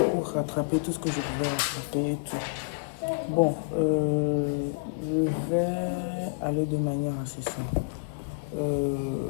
pour rattraper tout ce que je pouvais rattraper et tout. Bon, je vais aller de manière assez simple.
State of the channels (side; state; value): right; quieter; 32.6 dB